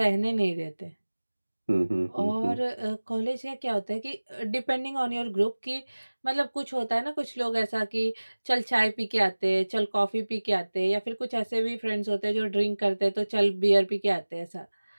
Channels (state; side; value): inverted; both; correlation -1.00